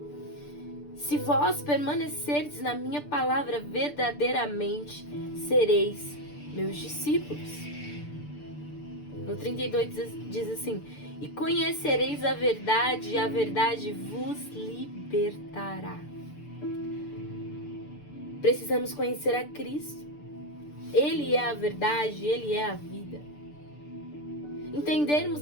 se vós permanecerdes na minha palavra verdadeiramente, sereis meus discípulos. No 32 diz assim: e conhecereis a verdade, e a verdade vos libertará. Precisamos conhecer a Cristo. Ele é a verdade, Ele é a vida.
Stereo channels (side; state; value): right; late; 6.8 ms